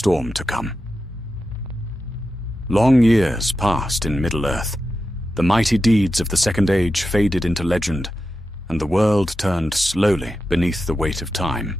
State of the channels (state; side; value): normal; both; correlation 0.91